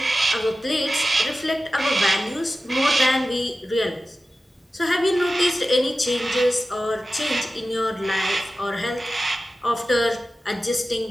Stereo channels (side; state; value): both; normal; correlation 0.94